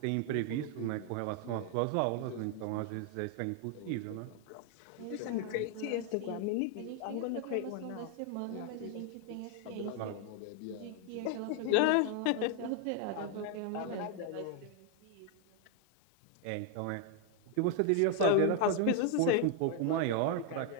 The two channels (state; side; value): different; both; correlation 0.01